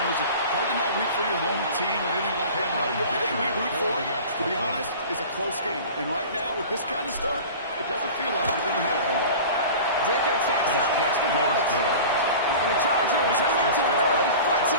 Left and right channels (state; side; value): inverted; both; correlation -0.38